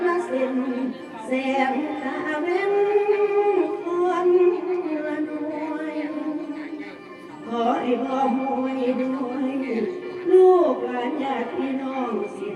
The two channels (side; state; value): both; identical; correlation 1.00